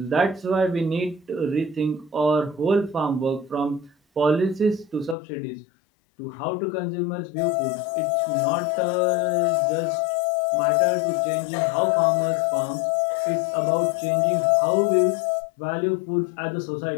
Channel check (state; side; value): drops out; right; at 5.2 s